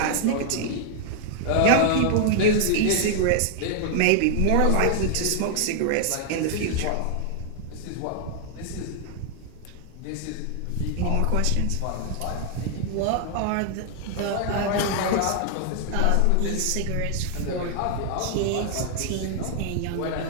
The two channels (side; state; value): both; different; correlation 0.00